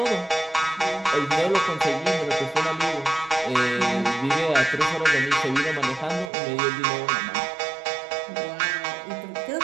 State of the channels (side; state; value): left; drops out; at 6.3 s